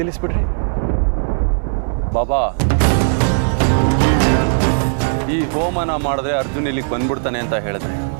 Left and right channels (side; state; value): left; silent; 67 dB below the other